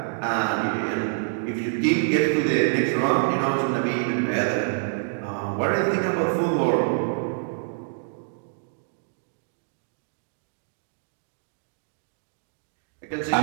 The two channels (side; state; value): left; silent; digital silence